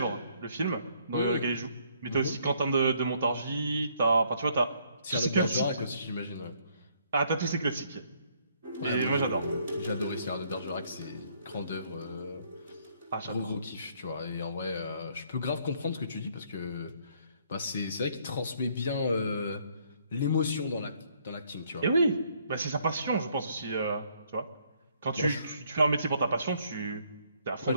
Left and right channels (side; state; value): both; inverted; correlation -0.67